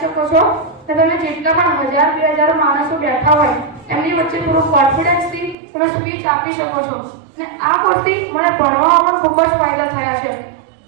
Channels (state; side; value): drops out; left; at 5.6 s